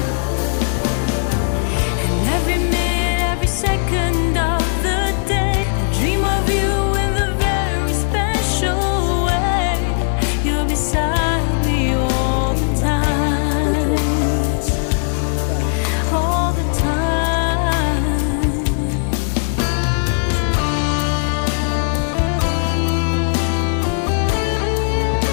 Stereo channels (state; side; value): silent; right; digital silence